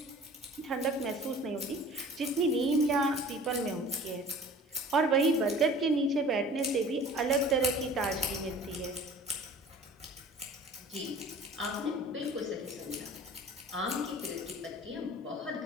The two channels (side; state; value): both; normal; correlation 0.45